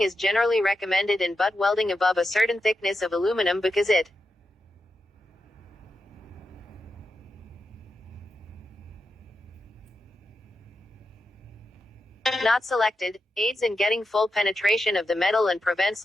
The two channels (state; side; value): normal; both; correlation 0.88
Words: is generally recommended in butt welding above a certain thickness of aluminum because it Not selected. Aids in getting full penetration of the metal and prevents